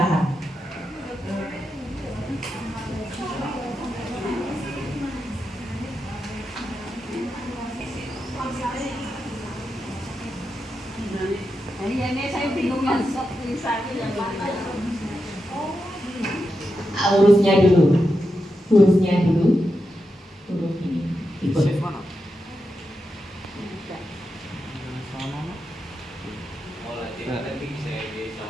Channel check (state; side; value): normal; both; correlation 0.87